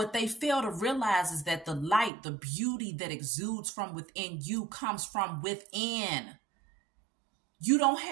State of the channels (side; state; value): left; drops out; at 2.1 s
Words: they fail to realize is that the light, the beauty that exudes from within you comes from within.